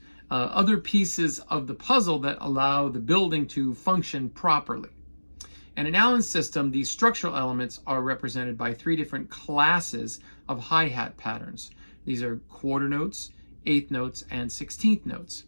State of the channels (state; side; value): inverted; both; correlation -1.00